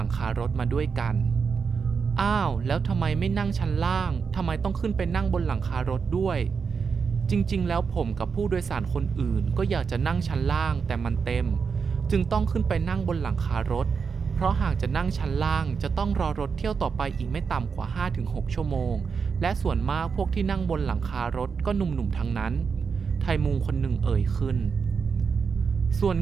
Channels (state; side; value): quieter; left; 5.7 dB